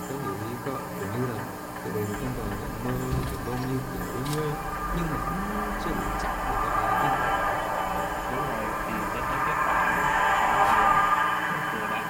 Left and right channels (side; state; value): both; identical; correlation 1.00